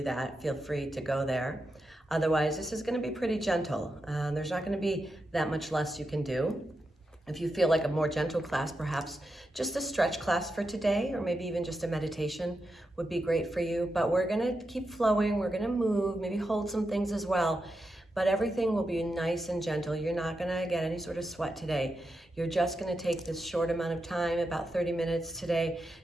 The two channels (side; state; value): both; normal; correlation 0.87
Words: that. Feel free to go there. Otherwise, this is going to be pretty gentle. There's not going to be that much less you can do. If you feel like a more gentle class, perhaps just a stretch class for today, or maybe even just a meditation would be great for you. But we're going to keep flowing. We're going to move, maybe hold some things as well. But everything will be nice and gentle. You're not going to get any sort of sweat today. You're just going to take this short amount of time, about 30 minutes today,